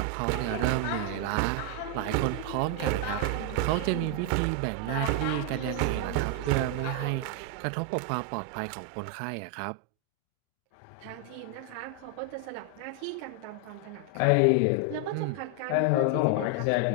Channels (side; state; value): both; different; correlation 0.00